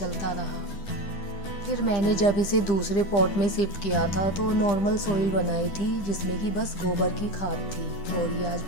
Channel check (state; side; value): late; right; 10 ms